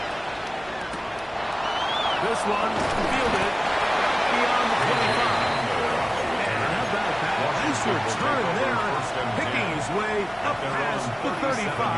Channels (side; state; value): left; noise; hum, 24 dB below the sound